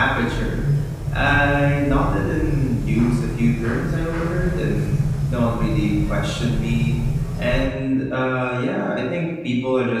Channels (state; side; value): identical; both; correlation 1.00